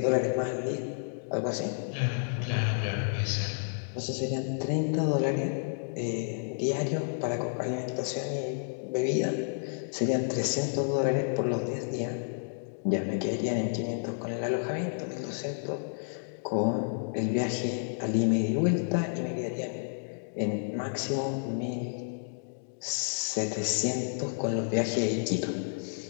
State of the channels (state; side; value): silent; right; digital silence